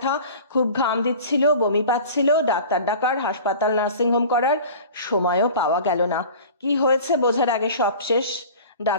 খুব ঘাম দিচ্ছিল, বমি পাচ্ছিল, ডাক্তার ডাকার, হাসপাতাল নার্সিংহোম করার সময়ও পাওয়া গেল না। কি হয়েছে বোঝার আগে সব শেষ।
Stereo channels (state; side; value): inverted; both; correlation -0.40